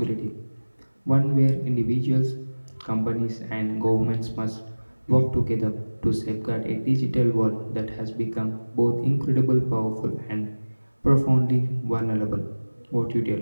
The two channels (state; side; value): inverted; both; correlation -1.00